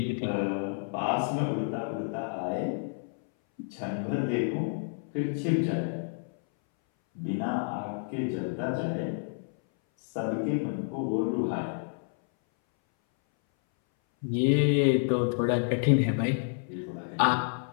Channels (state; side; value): silent; right; 58 dB below the other